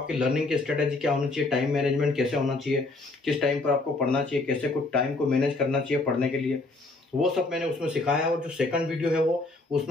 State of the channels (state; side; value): quieter; right; 3.2 dB